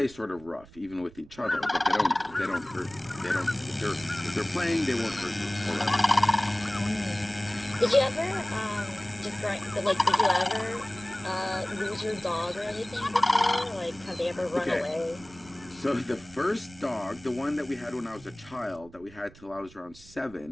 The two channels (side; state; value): right; noise; rumble, 22 dB below the sound